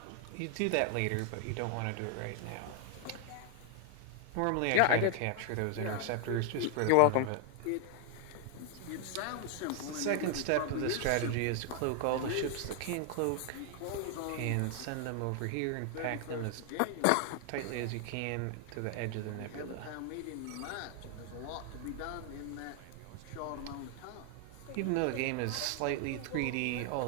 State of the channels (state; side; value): different; both; correlation 0.01